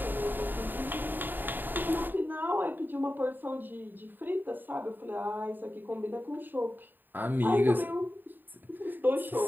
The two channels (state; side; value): late; left; 0.092 ms